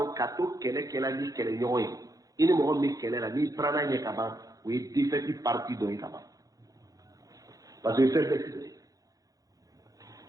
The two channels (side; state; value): left; late; 0.17 ms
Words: ka to kɛlɛ ni kɛlɛɲɔgɔn ye i ni mɔgɔ min bɛ kɛlɛ la n'i taara ɲɛ ka ban o ye défaite partie dɔ ye ka ban parce que fɛn bɛɛ tigɛ